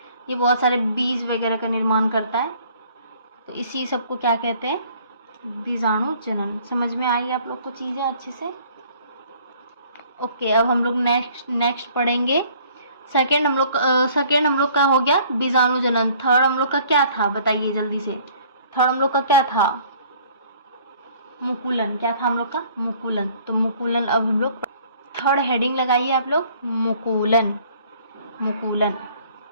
ये बहुत सारे बीज वगैरह का निर्माण करता है। तो इसी सबको क्या कहते हैं, बीजाणु जनन। समझ में आई आप लोग को चीजें अच्छे से? ओके, अब हम लोग नेक्स्ट पढ़ेंगे। सेकेंड हम लोग का हो गया बीजाणु जनन। थर्ड हम लोग का क्या था बताइए जल्दी से। थर्ड हम लोग का क्या था, मुकुलन। क्या था हम लोग का, मुकुलन। तो मुकुलन अब हम लोग थर्ड हेडिंग लगाइए आप लोग, मुकुलन। मुकुलन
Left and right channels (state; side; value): inverted; both; correlation -0.56